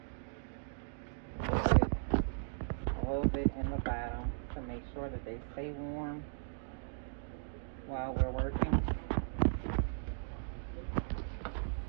A little bit in the bottom to make sure that they stay warm while we're working.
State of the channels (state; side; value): silent; left; digital silence